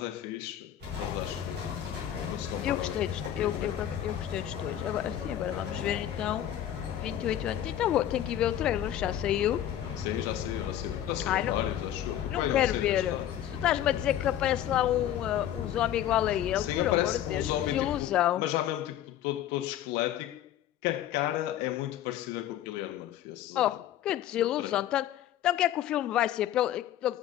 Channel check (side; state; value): right; quieter; 11.5 dB